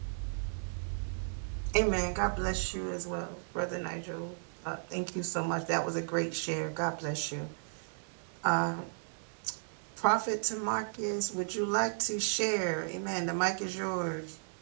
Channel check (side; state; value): left; silent; digital silence